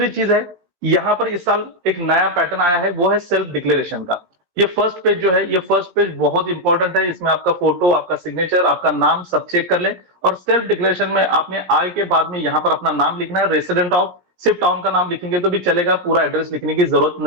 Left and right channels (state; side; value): late; left; 17 ms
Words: चीज है, यहाँ पर इस साल एक नया पैटर्न आया है, वो है सेल्फ डिक्लेरेशन का। ये फर्स्ट पेज जो है, ये फर्स्ट पेज बहुत इंपॉर्टेंट है। इसमें आपका फोटो, आपका सिग्नेचर, आपका नाम सब चेक कर लें। और सेल्फ डिक्लेरेशन में आपने आय के बाद में यहाँ पर अपना नाम लिखना है, रेसिडेंट ऑफ, सिर्फ टाउन का नाम लिखेंगे तो भी चलेगा, पूरा एड्रेस लिखने की जरूरत